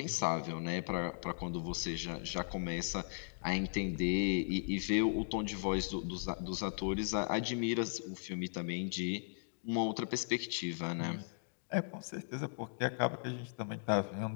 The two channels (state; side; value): silent; right; digital silence